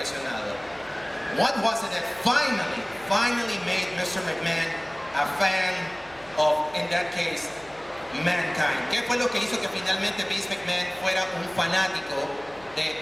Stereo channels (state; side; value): noise; left; hum, 26 dB below the sound